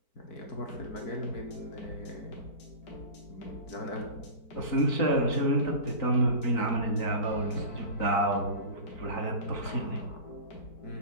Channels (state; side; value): late; right; 4.5 ms